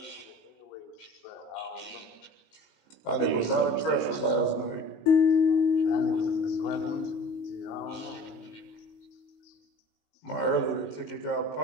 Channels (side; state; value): right; late; 19 ms